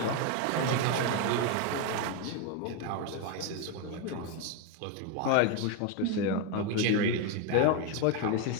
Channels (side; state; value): both; different; correlation 0.02